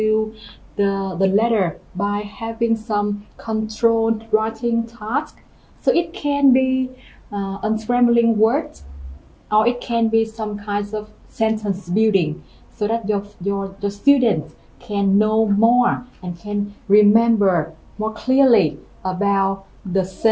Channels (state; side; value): identical; both; correlation 1.00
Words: the letter by having some controlled writing task. So it can be unscrambling words, or it can be some kinds of sentence building, so that your students can know more and can remember more clearly about the